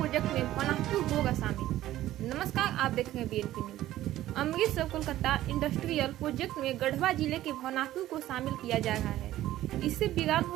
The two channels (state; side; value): quieter; left; 14.3 dB